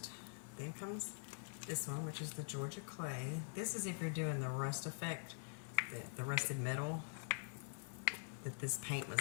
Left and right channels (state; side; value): silent; right; digital silence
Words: Then comes this one, which is the Georgia clay. This is if you're doing the rust effect, the rusted metal that this paint was